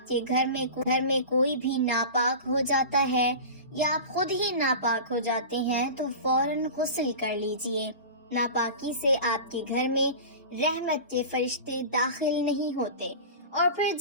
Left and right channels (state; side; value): inverted; both; correlation -0.32